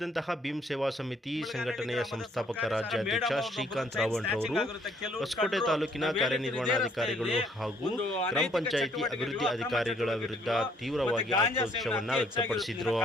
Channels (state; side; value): normal; both; correlation 0.64